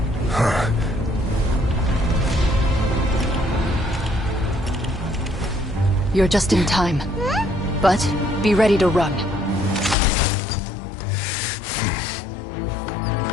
You're just in time. But be ready to run.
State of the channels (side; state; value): right; drops out; at 10.0 s